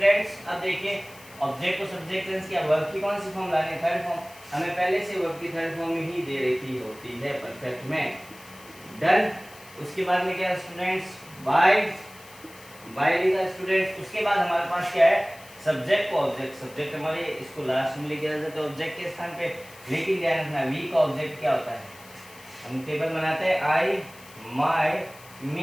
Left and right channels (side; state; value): left; noise; hiss, 21 dB below the sound